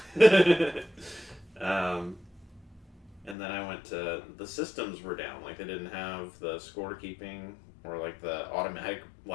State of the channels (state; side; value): drops out; right; at 3.4 s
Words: And then I went to, the systems were down, like they didn't have the scorekeeping or like the automatic